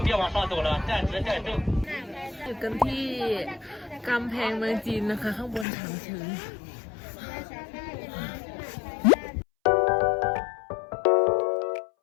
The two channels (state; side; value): drops out; right; at 5.7 s